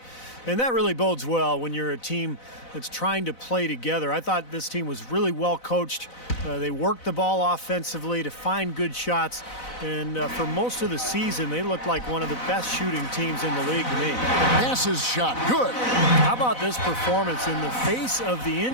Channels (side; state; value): right; late; 4.0 ms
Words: And that really bodes well when you're a team that's trying to play together. I thought this team was really well coached. They worked the ball offensively to find good shots. And for most of the season, they looked like one of the best shooting teams in the league to me. Passes shot. Good. How about this performance in the face of the